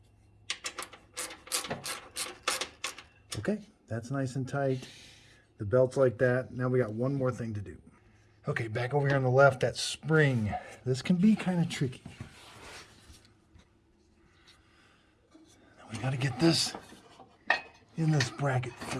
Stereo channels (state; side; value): identical; both; correlation 1.00